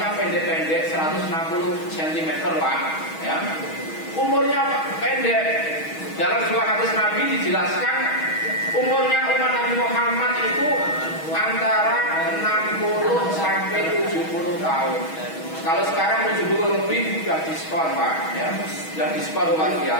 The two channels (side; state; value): right; late; 6.3 ms